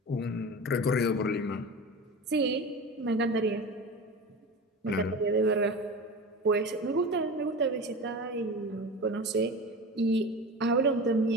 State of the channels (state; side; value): normal; both; correlation 0.31